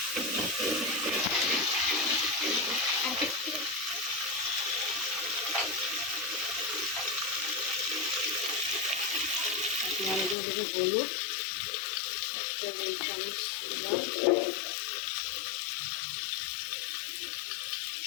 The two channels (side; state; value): right; drops out; at 10.4 s